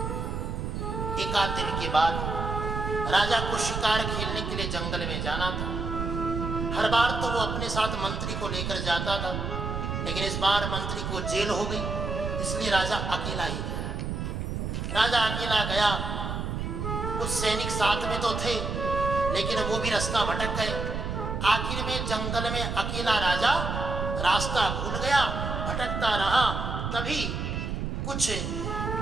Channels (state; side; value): noise; right; rumble, 3 dB below the sound